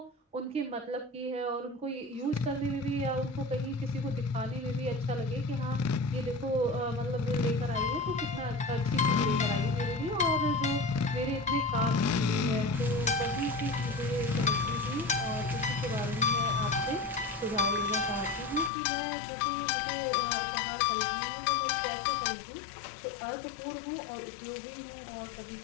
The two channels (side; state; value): right; drops out; at 18.7 s